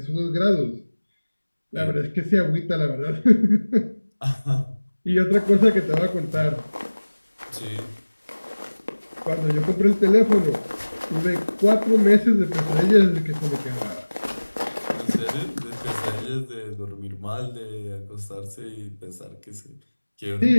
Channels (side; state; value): both; inverted; correlation -1.00